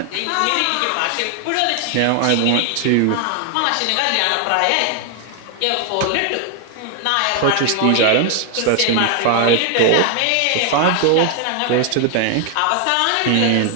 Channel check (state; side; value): different; both; correlation 0.00